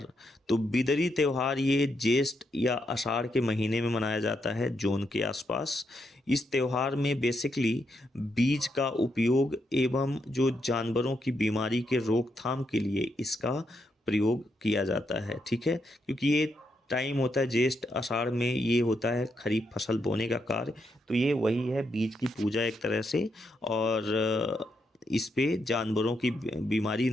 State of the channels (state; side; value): normal; both; correlation 0.80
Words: तो बिदरी त्यौहार ये ज्येष्ठ या आषाढ़ के महीने में मनाया जाता है, जून के आसपास। इस त्यौहार में बेसिकली बीज का उपयोग एवं जो जानवरों की बीमारी के रोकथाम के लिए इसका प्रयोग किया जाता है, ठीक है। क्योंकि ये टाइम होता है ज्येष्ठ आषाढ़ में, ये होता है खरीफ फसल बोने का कार्य। तो ये वही है बीज की पूजा एक तरह से, और इस पे जानवरों की बीमारी